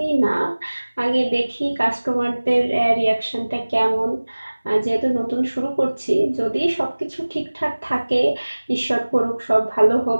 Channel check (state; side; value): inverted; both; correlation -1.00